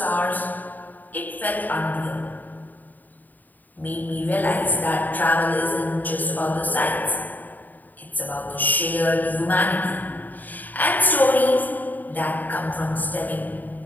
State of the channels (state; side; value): late; right; 0.085 ms